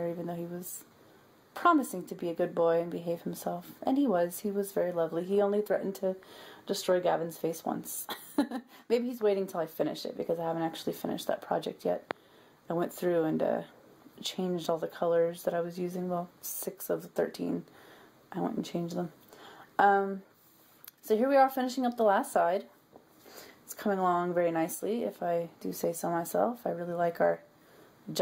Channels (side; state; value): both; identical; correlation 1.00